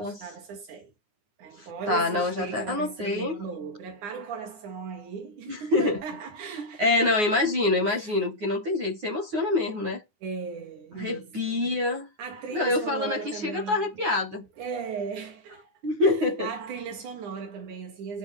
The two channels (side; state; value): left; late; 9.5 ms